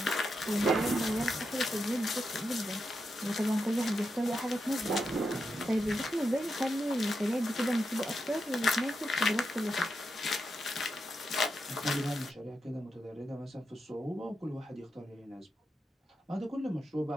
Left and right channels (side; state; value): both; normal; correlation 0.86